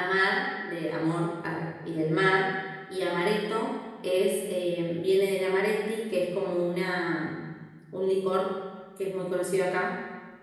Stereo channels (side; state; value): both; identical; correlation 1.00